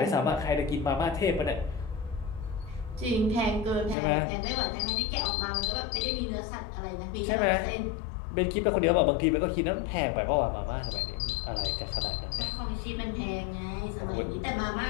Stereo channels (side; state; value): right; drops out; at 4.0 s